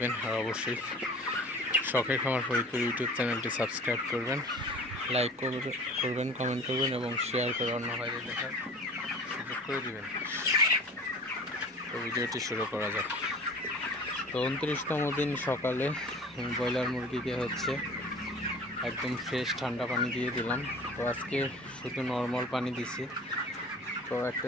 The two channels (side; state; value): both; normal; correlation 0.43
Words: আর অবশ্যই শখের খামার ফরিদপুর ইউটিউব চ্যানেলটি সাবস্ক্রাইব করবেন, লাইক করবেন, কমেন্ট করবেন এবং শেয়ার করে অন্য ভাইদের দেখার সুযোগ করে দিবেন। তো ভিডিওটি শুরু করা যাক। তো 29তম দিন সকালে ব্রয়লার মুরগিকে হচ্ছে একদম ফ্রেশ ঠান্ডা পানি দিয়ে দিলাম। তো আজকে শুধু নর্মাল পানি দিছি। তো